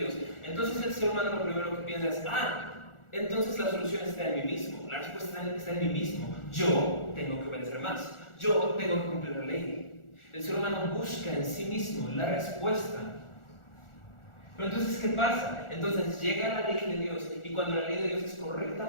entonces el ser humano lo primero que piensa es: entonces la solución está en mí mismo, la respuesta está en mí mismo. Yo tengo que obedecer más, yo tengo que cumplir la ley. El ser humano busca en sí mismo la respuesta. Pero entonces, ¿qué pasa? Entonces llega la ley de Dios, y cuando la ley de Dios es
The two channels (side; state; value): right; late; 1.4 ms